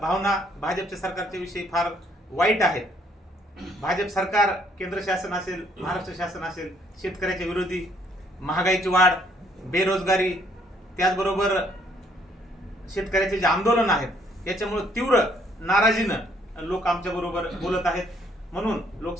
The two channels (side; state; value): both; normal; correlation 0.66